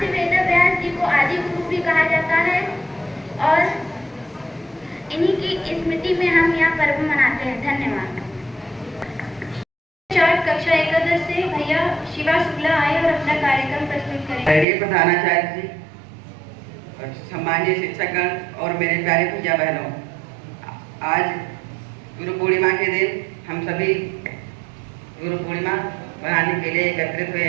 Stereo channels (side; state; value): left; drops out; at 14.7 s